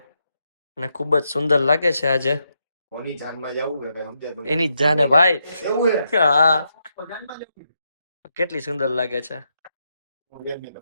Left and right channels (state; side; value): inverted; both; correlation -0.82